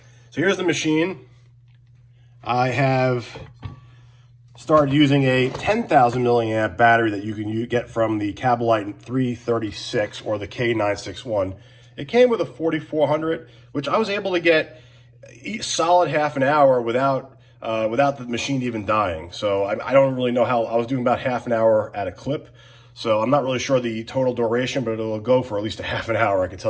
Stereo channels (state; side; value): identical; both; correlation 1.00